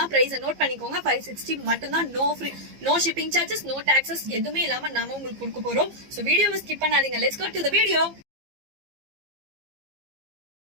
பிரைஸ் நோட் பண்ணிக்கோங்க. 560 மட்டும் தான். No free, no shipping charges, no taxes எதுவுமே இல்லாம நாம உங்களுக்கு கொடுக்க போறோம். சோ வீடியோவை ஸ்கிப் பண்ணாதீங்க. Let's go to the video.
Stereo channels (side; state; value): left; late; 15 ms